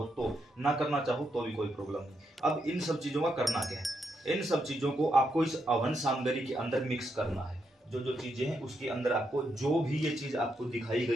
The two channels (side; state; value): both; normal; correlation 0.81